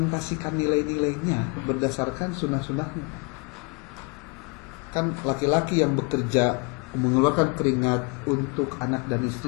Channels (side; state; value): right; quieter; 31.3 dB